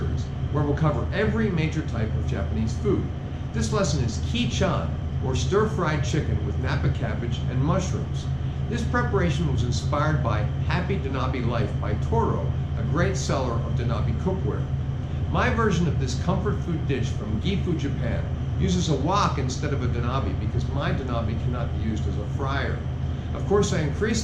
where we'll cover every major type of Japanese food. This lesson is Kei-Chan, or stir-fried chicken with Napa cabbage and mushrooms. This preparation was inspired by Happy Donabe Life by Toiro, a great seller of Donabe cookware. My version of this comfort food dish from Gifu Japan uses a wok instead of a donabe because my donabe cannot be used as a fryer. Of course, I increase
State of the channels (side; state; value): both; identical; correlation 1.00